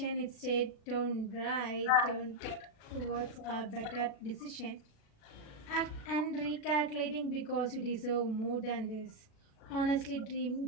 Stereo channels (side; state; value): right; late; 37 ms